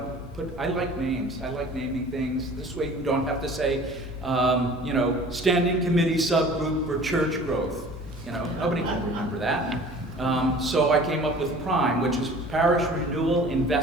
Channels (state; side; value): normal; both; correlation 0.46